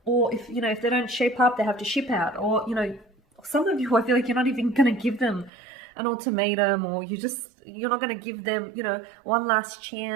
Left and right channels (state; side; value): drops out; left; at 5.5 s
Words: or if they don't shape up, they have to ship out, or, some of you, I feel like you're not even going to give them an ultimatum, or you're not going to give them, one last